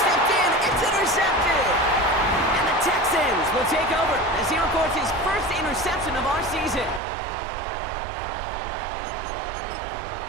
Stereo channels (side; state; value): left; drops out; at 7.0 s